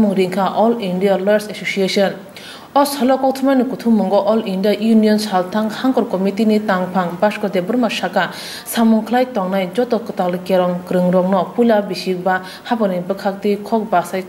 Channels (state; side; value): identical; both; correlation 1.00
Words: ringka All India Lawyers Association Os halo kothumani kuthumungo All India Union Shaltang hangor committee ni tangphang basko de burma shaka samungklai tongnai joto kotal kerong krongrogno pula bisigba haboni bakakti khok basai